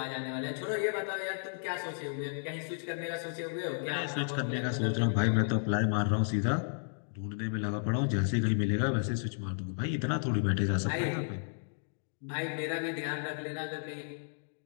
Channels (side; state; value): right; silent; digital silence